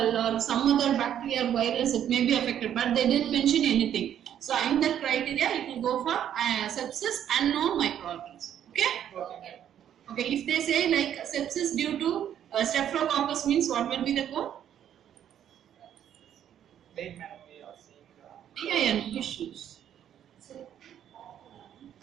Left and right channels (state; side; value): quieter; left; 10.0 dB